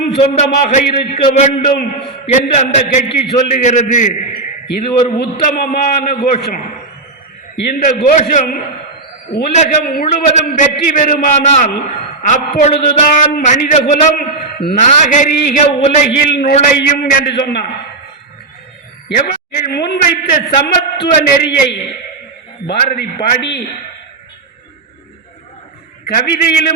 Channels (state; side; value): quieter; left; 3.3 dB